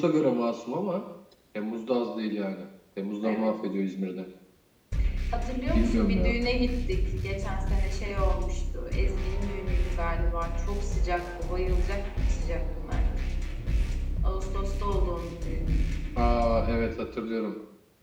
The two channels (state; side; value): identical; both; correlation 1.00